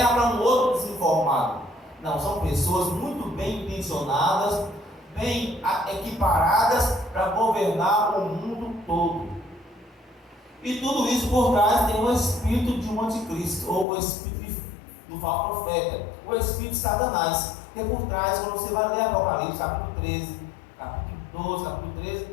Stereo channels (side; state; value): right; drops out; at 13.9 s